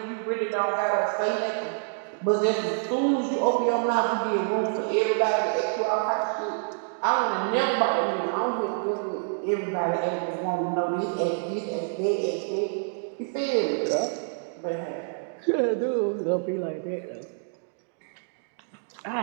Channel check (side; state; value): left; silent; digital silence